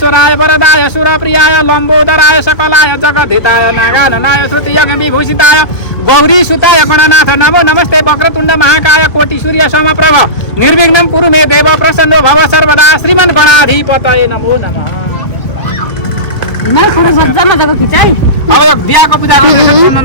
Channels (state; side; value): late; right; 1.5 ms